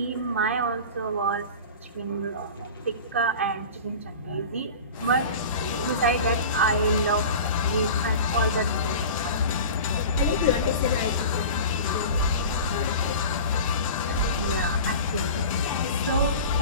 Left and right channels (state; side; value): inverted; both; correlation -0.35